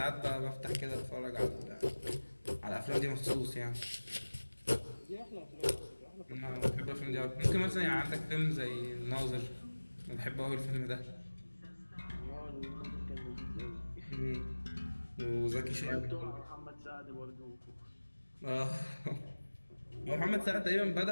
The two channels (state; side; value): inverted; both; correlation -1.00